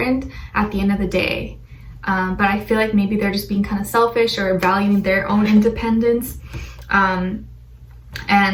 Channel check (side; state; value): both; identical; correlation 1.00